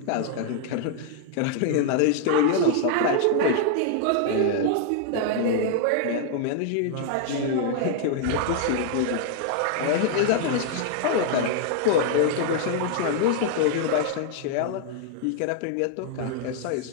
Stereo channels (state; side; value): different; both; correlation -0.01